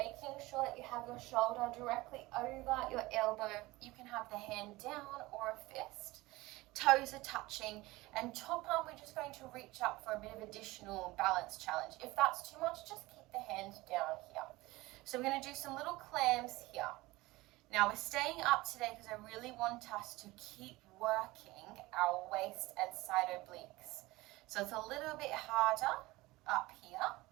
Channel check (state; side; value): quieter; left; 20.3 dB